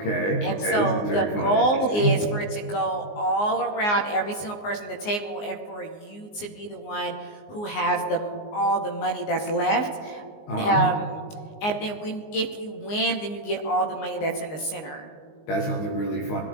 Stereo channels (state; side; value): late; right; 19 ms